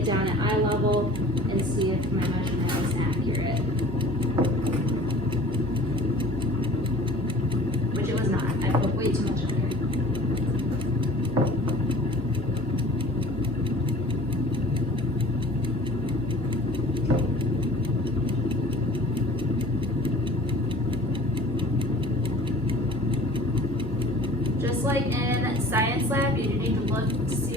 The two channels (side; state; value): both; normal; correlation 0.46